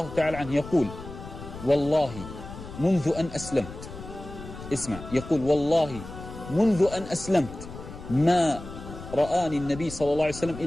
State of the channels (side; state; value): left; noise; rumble, 13 dB below the sound